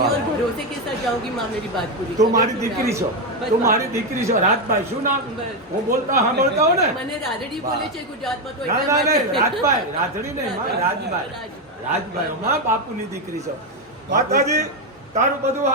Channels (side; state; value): both; normal; correlation 0.07